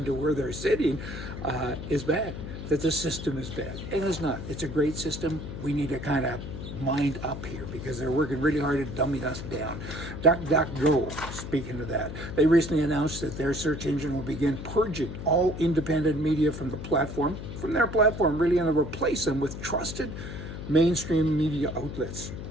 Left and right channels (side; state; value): left; noise; hum, 8 dB below the sound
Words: to where they're sitting is bad, that the system is bad. And it's not. It's a great system. We need to kind of mind up here because they're working really hard at dumbing us down. DuckDuckGo, speaking of that, they recently announced that their search engine will begin purging all independent media from their platform, really, and to replace them with trusted mainstream media outlets.